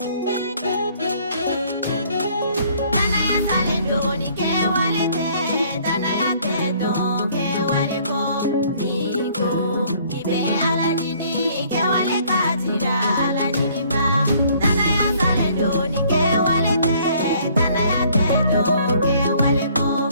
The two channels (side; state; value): both; inverted; correlation -0.60